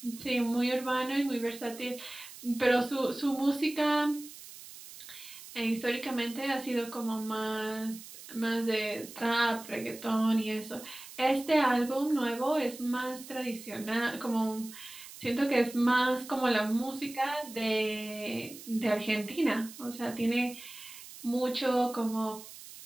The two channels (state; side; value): noise; right; hiss, 15 dB below the sound